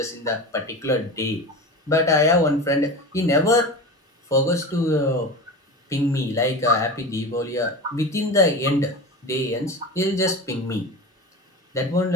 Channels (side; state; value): both; normal; correlation 0.28